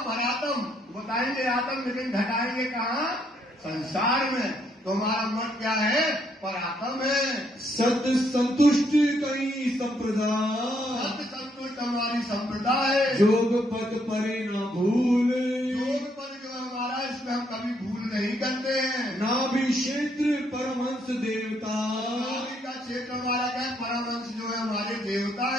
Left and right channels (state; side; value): normal; both; correlation 0.72